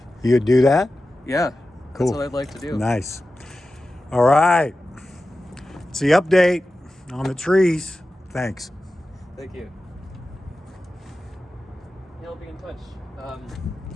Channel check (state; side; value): normal; both; correlation 0.94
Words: You'd do that? Yeah, Cool. that's what I'd like to do. Nice. All right. It's the update on the trees. Thanks. Thank you. Yeah, I'll be in touch.